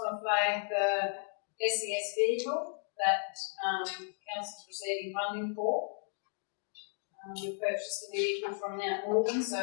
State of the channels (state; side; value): silent; right; 55 dB below the other